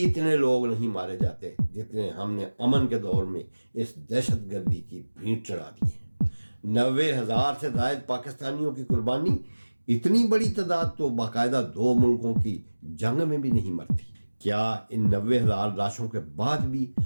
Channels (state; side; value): inverted; both; correlation -1.00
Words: लोग नहीं मारे जाते जितने हमने अमन के दौर में इस दहशतगर्दी की भींट चढ़ा दी है। 90,000 से ज़ायद पाकिस्तानियों की कुर्बानी, इतनी बड़ी तादाद तो बाकायदा 2 मुल्कों की जंग में भी नहीं मरती। क्या इन 90,000 लाशों के बाद भी